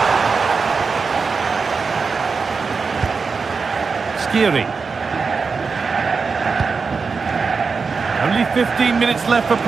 Skiri. Only 15 minutes left for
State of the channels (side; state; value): left; quieter; 4.9 dB